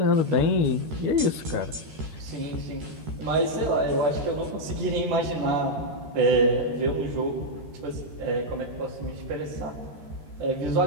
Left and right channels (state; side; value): late; left; 13 ms